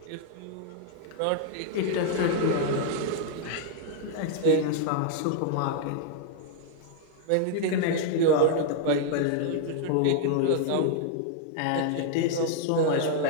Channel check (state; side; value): different; both; correlation -0.01